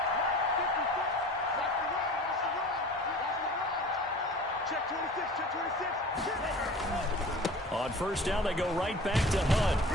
On first down, they go right back to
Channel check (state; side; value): normal; both; correlation 0.41